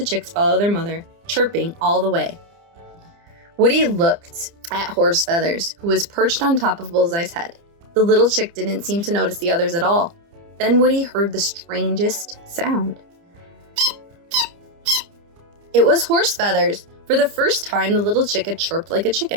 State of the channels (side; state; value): left; late; 29 ms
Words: chicks follow their mother, chirping all the way. Woody looked at Horse Feathers, who was perched on top of Bullseye's head. The little chick didn't seem to notice the others at all. Then Woody heard the strangest sound. It was Horse Feathers. For the first time, the little chick had chirped like a